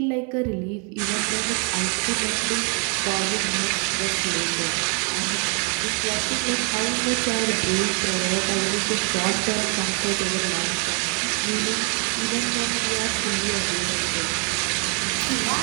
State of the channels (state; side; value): quieter; left; 37.4 dB